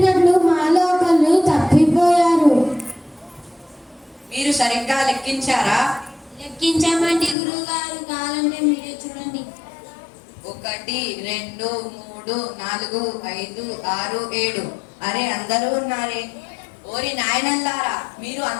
మాలో ఒకరు తప్పిపోయారు. మీరు సరిగ్గా లెక్కించారా? లెక్కించామండి గురుగారు, కావాలంటే మీరే చూడండి. 1 2 3 4 5 6 7. అరే అందరూ ఉన్నారే. ఓరి నాయనల్లారా, మీరు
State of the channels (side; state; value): right; drops out; at 7.4 s